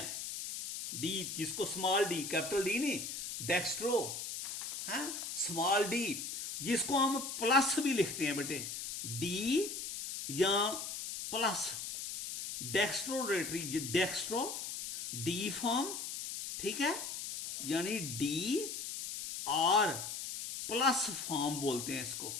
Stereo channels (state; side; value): noise; left; hiss, 6 dB below the sound